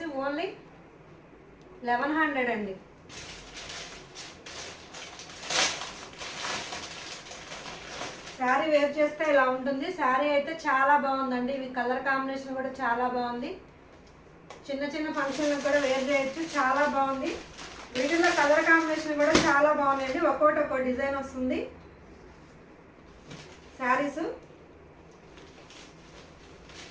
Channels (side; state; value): both; identical; correlation 1.00